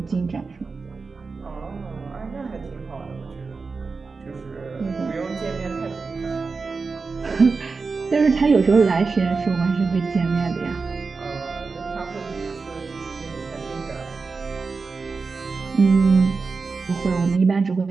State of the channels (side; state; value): left; quieter; 4.5 dB